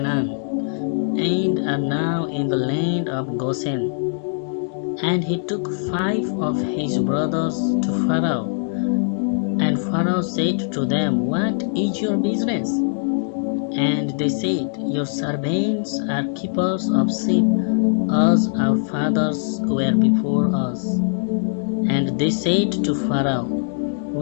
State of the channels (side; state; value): right; silent; digital silence